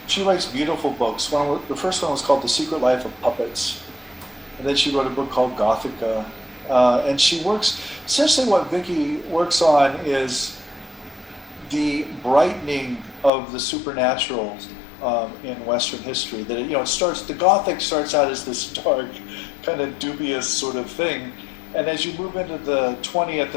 she writes beautiful books. The first one was called The Secret Life of Puppets. And then she wrote a book called Gothica. And she works, essentially what Vicki works on is the brightening of the supernatural in Western history. That it starts, the Gothic starts out as this dark, kind of dubious sort of thing. And as you move into the 20th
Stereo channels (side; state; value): right; drops out; at 13.3 s